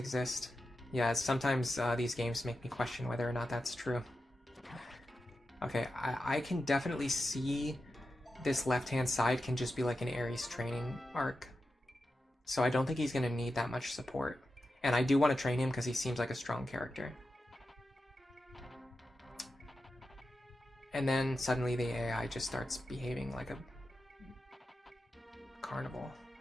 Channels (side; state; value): both; normal; correlation 0.90